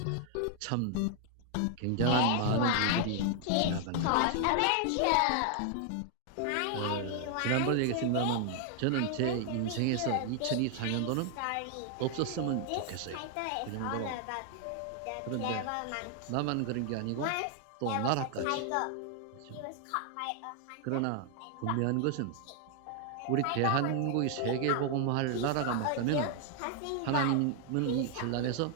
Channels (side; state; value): both; different; correlation 0.00